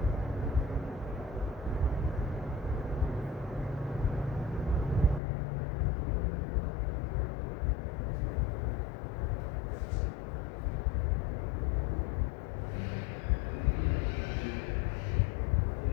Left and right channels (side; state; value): right; drops out; at 5.2 s